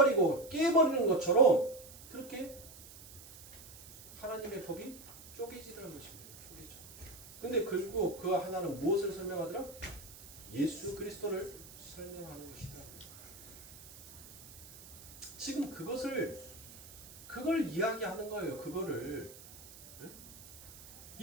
깨버리는 것처럼 그렇게 하나님의 법이 쪼개지라는 것입니다. 쪼개져. 근데 결국 그 하나는 무엇을 설명하더라? 예수 그리스도를 설명하는 것이다. 지금 그걸 이야기하는 거예요. 그거를.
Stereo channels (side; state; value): right; noise; hiss, 17 dB below the sound